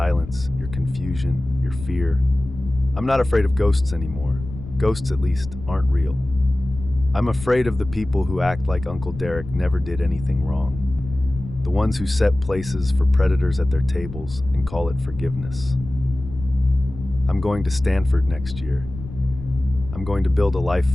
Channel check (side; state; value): left; noise; rumble, 12 dB below the sound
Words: your confusion, your fear. I'm not afraid of ghosts anymore. Ghosts, at least, aren't real. I'm afraid of the people who act like Uncle Derek never did anything wrong. The ones who set places for predators at their tables and call it forgiveness. I'm going to Stanford next year. I'm going to build a life